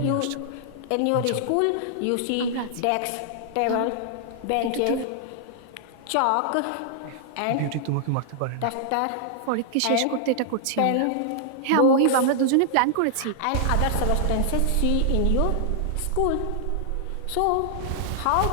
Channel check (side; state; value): both; different; correlation -0.01